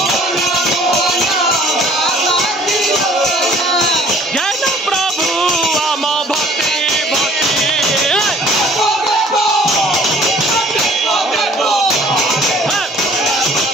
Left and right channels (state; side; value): normal; both; correlation 0.54